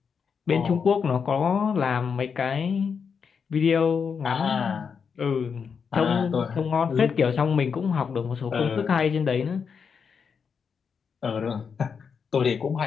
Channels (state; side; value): quieter; right; 6.2 dB